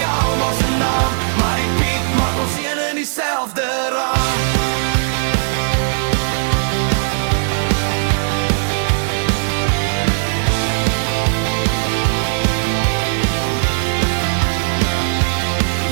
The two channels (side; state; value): left; silent; digital silence